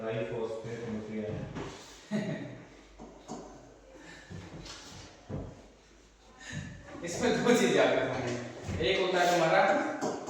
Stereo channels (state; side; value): identical; both; correlation 1.00